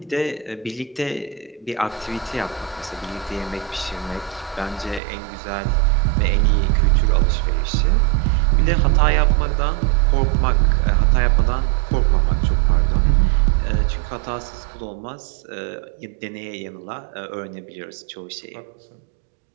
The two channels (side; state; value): left; drops out; at 5.0 s